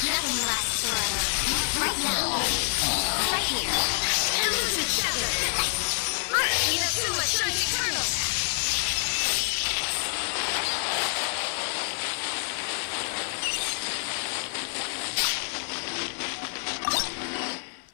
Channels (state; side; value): silent; right; digital silence